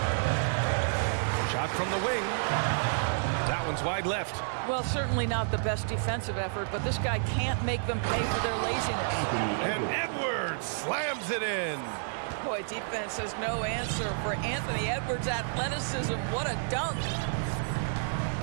Shot from the wing. That one's wide left. Well, certainly not the best defensive effort, but this guy can't make them pay for their laziness. And Edwards slams it in. Boy, defense has no answer for Anthony Edwards' athleticism. What a dunk.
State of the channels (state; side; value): silent; left; digital silence